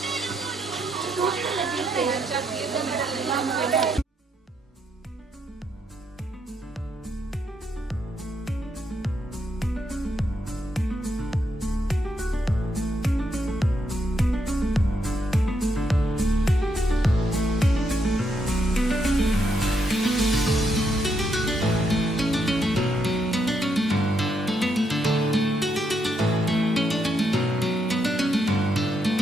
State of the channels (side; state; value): both; normal; correlation 0.78